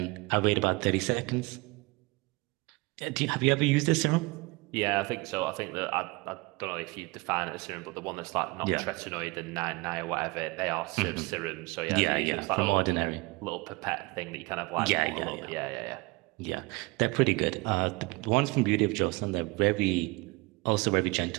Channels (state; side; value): quieter; left; 25.0 dB